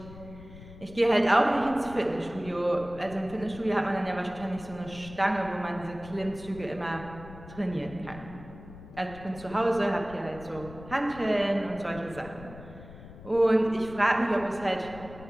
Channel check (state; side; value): noise; left; rumble, 16 dB below the sound